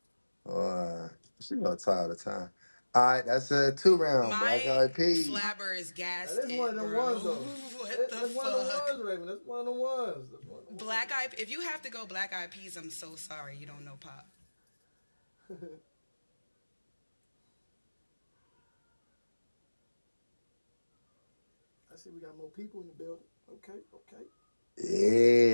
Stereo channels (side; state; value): both; inverted; correlation -1.00